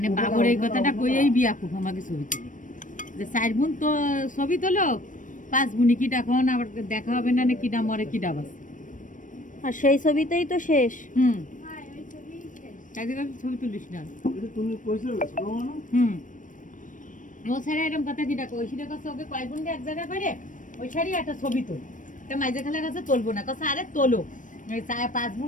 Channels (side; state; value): right; late; 0.38 ms